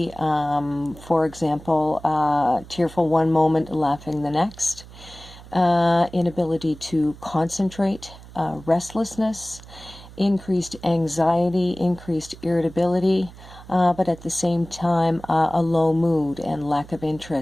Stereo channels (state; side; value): noise; right; hum, 18 dB below the sound